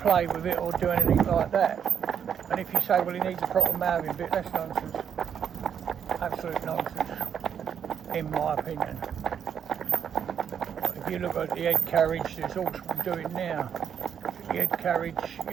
with it or do anything like that. And if you say, well, he needs a proper mouthing bit, that's nonsense. Absolute nonsense, in my opinion. If you look at the head carriage, there's all I'm doing now. The head carriage,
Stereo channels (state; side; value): quieter; left; 8.1 dB